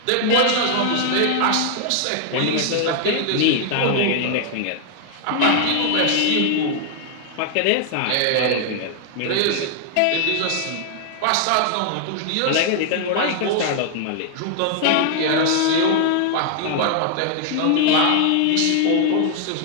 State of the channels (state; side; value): different; both; correlation 0.00